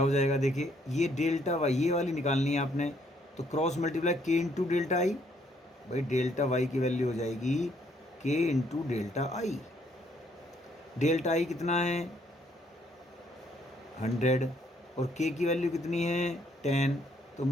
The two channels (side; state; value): both; normal; correlation 0.68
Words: हो जाएगा, देखिए ये डेल्टा वाई, ये वाली निकालनी है आपने, तो क्रॉस मल्टीप्लाई के इंटू डेल्टा आई। भाई डेल्टा वाई की वैल्यू हो जाएगी के इंटू डेल्टा आई। डेल्टा आई कितना है 100 और के की वैल्यू कितनी है 10, तो